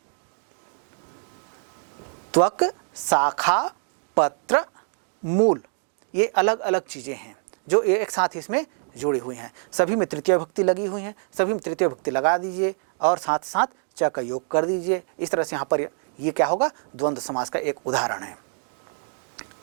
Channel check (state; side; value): silent; left; 56 dB below the other